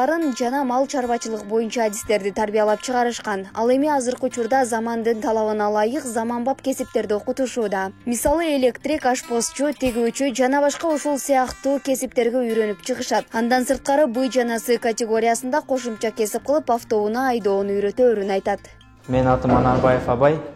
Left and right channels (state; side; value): identical; both; correlation 1.00